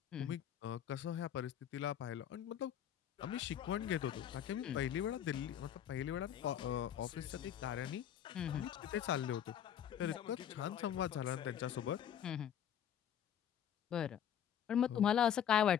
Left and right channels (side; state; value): right; quieter; 9.5 dB